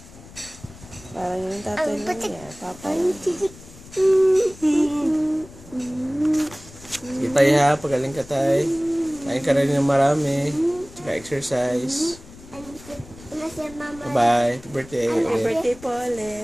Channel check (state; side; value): noise; left; rumble, 20 dB below the sound